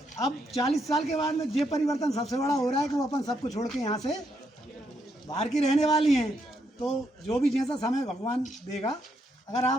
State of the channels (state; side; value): normal; both; correlation 0.77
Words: अब 40 साल के बाद में ये परिवर्तन सबसे बड़ा हो रहा है कि वो अपन सबको छोड़ के यहाँ से बाहर की रहने वाली हैं। तो जो भी जैसा समय भगवान देगा, अगर